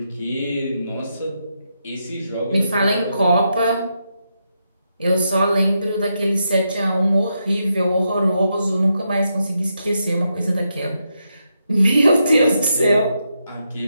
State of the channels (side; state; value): both; inverted; correlation -0.83